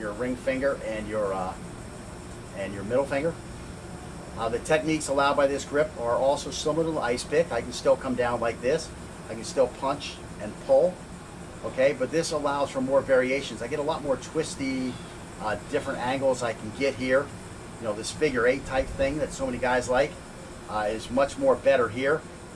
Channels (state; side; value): identical; both; correlation 1.00